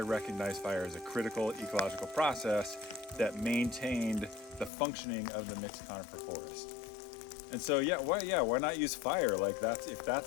recognize fire as a critical ecological process that maintained the functioning of the mixed conifer forest. And so, why not use fire? Like if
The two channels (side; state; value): right; drops out; at 4.7 s